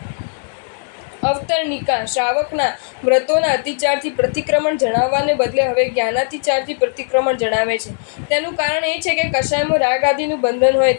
અવતરણિકા શ્રાવકના વ્રતોના અતિચારથી પ્રતિક્રમણ જણાવવાને બદલે હવે જ્ઞાનાતિચારથી પ્રતિક્રમણ જણાવે છે. તેનું કારણ એ છે કે કશાયમાં રાગ આદિનું બંધન હોય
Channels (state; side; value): silent; right; digital silence